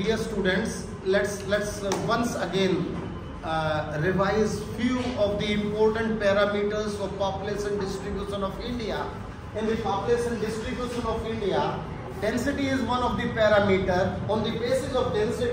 students, let's once again revise few of the important parameters of population distribution of India. In the population distribution of India, density is one of the parameter. On the basis of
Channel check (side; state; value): both; identical; correlation 1.00